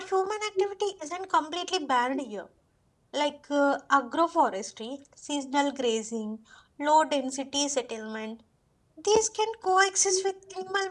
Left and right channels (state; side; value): identical; both; correlation 1.00